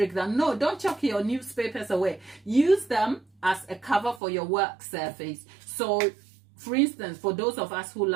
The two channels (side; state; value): left; drops out; at 4.2 s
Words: that no, don't chuck your newspapers away. Use them as a cover for your work surface. So, for instance, for those of us who